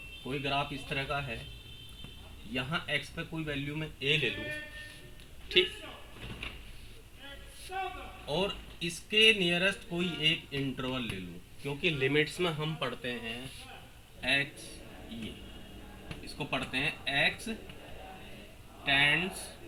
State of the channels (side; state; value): both; identical; correlation 1.00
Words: कोई ग्राफ इस तरह का है, यहाँ x पे कोई वैल्यू में a ले लूँ, ठीक, और इसके नियरेस्ट कोई एक इंटरवल ले लूँ, क्योंकि लिमिट्स में हम पढ़ते हैं x, ये इसको पढ़ते हैं x टेंड्स